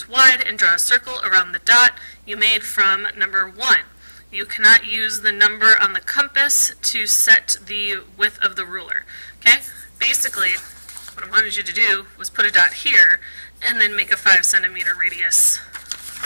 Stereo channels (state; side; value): inverted; both; correlation -1.00